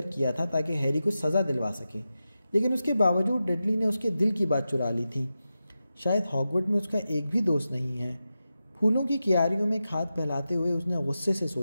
کیا تھا تاکہ ہیری کو سزا دلوا سکے، لیکن اس کے باوجود ڈڈلی نے اس کے دل کی بات چرا لی تھی۔ شاید ہاگورٹ میں اس کا ایک بھی دوست نہیں ہے۔ پھولوں کی کیاریوں میں کھاد پھیلاتے ہوئے اس نے غصے سے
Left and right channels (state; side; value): inverted; both; correlation -0.92